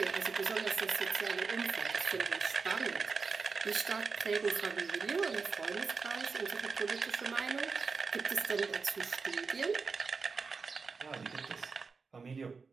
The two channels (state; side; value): quieter; left; 4.8 dB